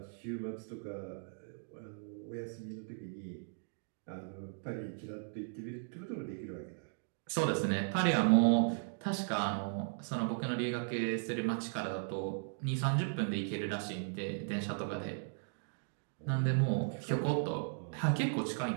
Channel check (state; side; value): silent; left; digital silence